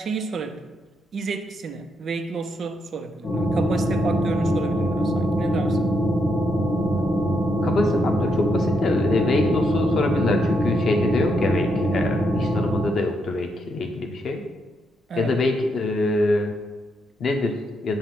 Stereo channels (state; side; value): normal; both; correlation 0.79